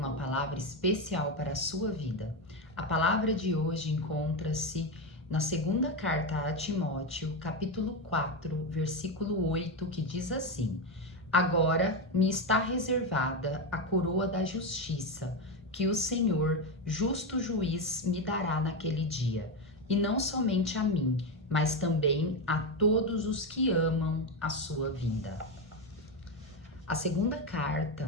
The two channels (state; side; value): normal; both; correlation 0.12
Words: palavra especial para a sua vida. A palavra de hoje encontra-se na segunda carta a Timóteo, capítulo 4, versículo 8, que diz assim: Agora me está reservada a coroa da justiça, que o Senhor, justo juiz, me dará naquele dia, e não somente a mim, mas também a todos os que amam a sua vinda. A segunda